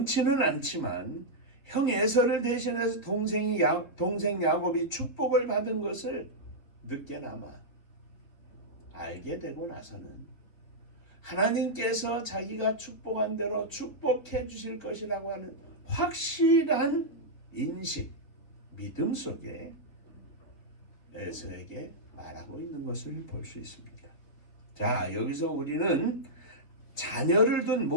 않지만 형 에서를 대신해서 동생 야곱이 축복을 받은 것을 늦게나마 알게 되고 나서는 하나님께서 자기가 축복한 대로 축복해 주실 것이라고 하는 확실한 인식, 믿음 속에 에서에게 말하고 있는 것을 볼 수 있습니다. 자, 여기서 우리는 자녀를 둔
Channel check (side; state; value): right; late; 4.0 ms